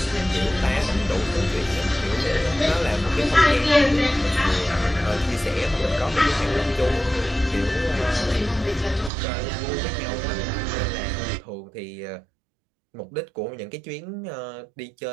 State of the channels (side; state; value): left; drops out; at 9.1 s